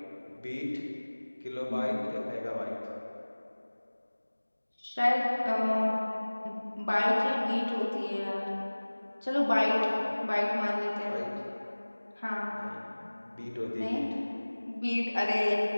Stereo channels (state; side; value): inverted; both; correlation -1.00